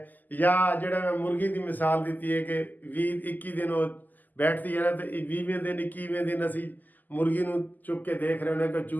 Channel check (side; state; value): right; late; 0.084 ms